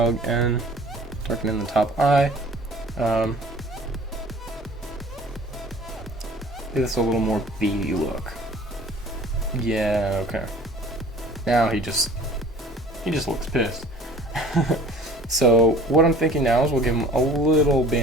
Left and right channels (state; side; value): normal; both; correlation 0.48